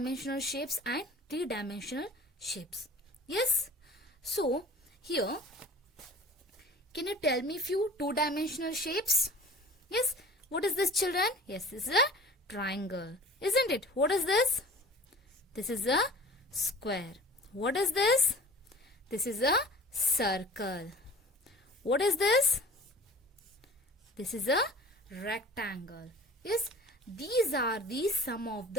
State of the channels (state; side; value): normal; both; correlation 0.43